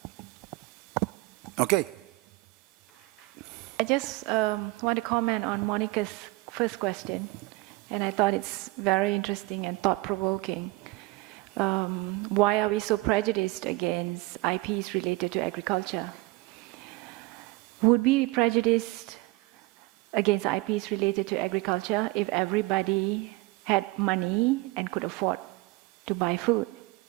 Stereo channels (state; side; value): quieter; left; 22.1 dB